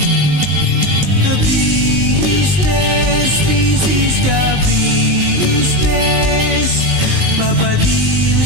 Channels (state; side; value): late; left; 19 ms